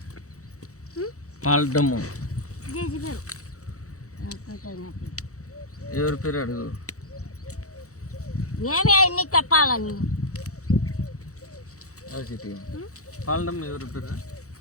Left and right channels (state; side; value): late; right; 0.65 ms